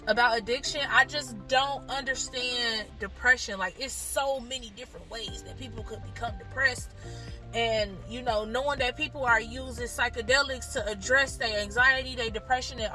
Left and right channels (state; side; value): identical; both; correlation 1.00